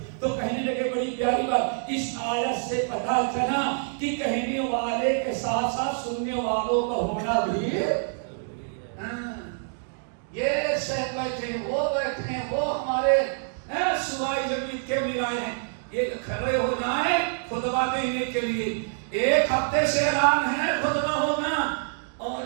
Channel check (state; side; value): silent; left; digital silence